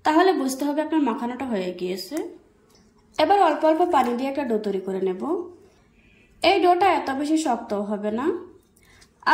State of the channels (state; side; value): identical; both; correlation 1.00